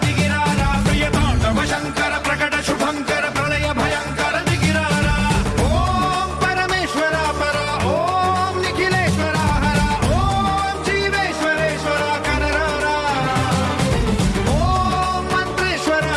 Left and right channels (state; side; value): identical; both; correlation 1.00